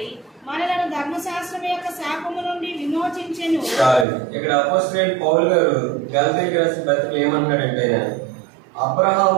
మనలను ధర్మశాస్త్రం యొక్క శాపము నుండి విమోచించెను. ఇక్కడ అపోస్తలుడైన పౌలు గారు గలతీయులకు రాసిన పత్రికలో ఏమంటాడంటే,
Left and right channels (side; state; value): left; drops out; at 4.0 s